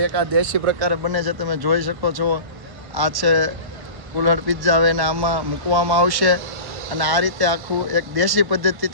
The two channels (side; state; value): left; late; 1.1 ms